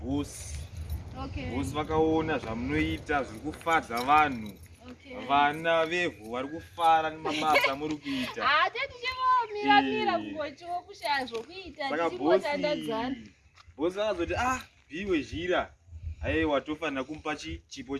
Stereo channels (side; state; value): both; identical; correlation 1.00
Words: Bosi vakaona zvamunoita zviri kufadza vanhu. Vana vevhu vari kufara nemabasa muri kuita. Saka bosi akazoti piwe zhira. Aiwa tofanira kumupa chipo